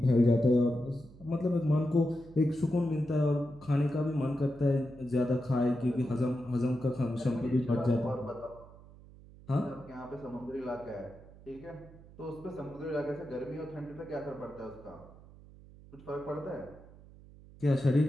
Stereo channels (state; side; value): noise; right; hum, 21 dB below the sound